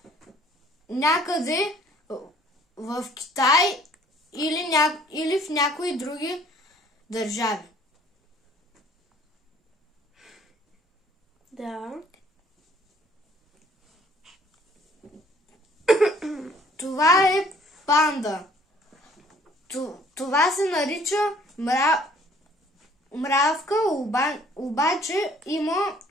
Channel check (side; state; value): both; normal; correlation 0.58